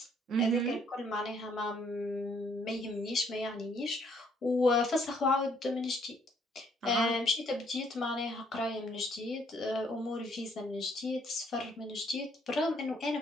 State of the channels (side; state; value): both; normal; correlation 0.66